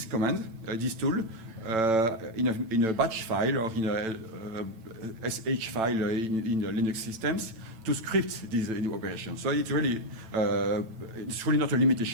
command, this tool, in a batch file or in a SH file in the Linux systems to script these operations. So it's really not a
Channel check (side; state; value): left; late; 9.0 ms